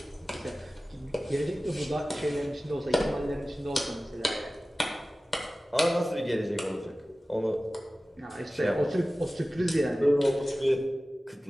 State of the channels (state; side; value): normal; both; correlation 0.96